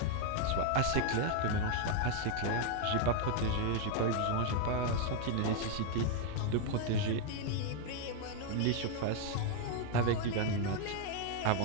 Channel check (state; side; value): different; both; correlation 0.00